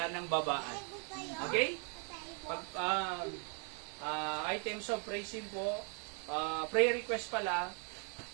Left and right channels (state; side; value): quieter; left; 39.5 dB